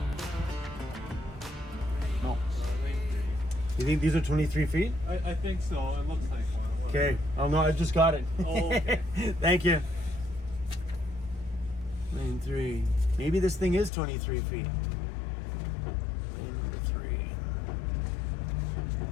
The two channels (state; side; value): drops out; right; at 13.9 s